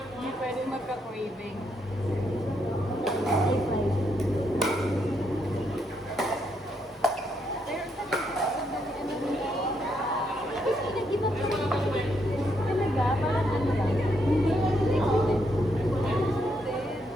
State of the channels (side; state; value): both; normal; correlation 0.77